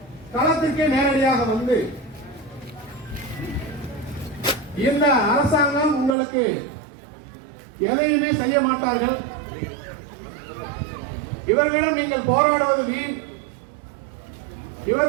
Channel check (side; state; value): left; drops out; at 6.2 s